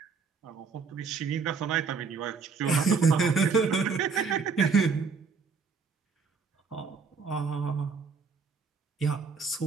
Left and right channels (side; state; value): left; quieter; 5.1 dB